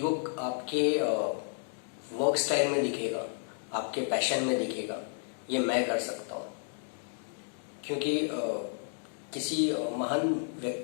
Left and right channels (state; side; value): silent; right; 56 dB below the other